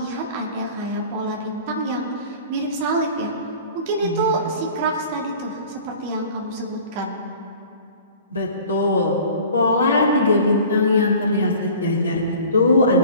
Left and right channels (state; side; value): inverted; both; correlation -0.45